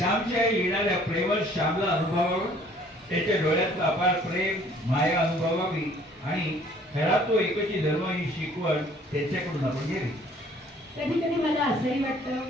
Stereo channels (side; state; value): both; normal; correlation 0.57